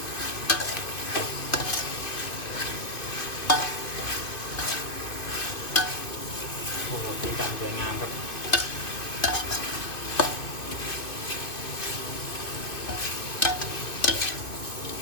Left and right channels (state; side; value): late; right; 2.5 ms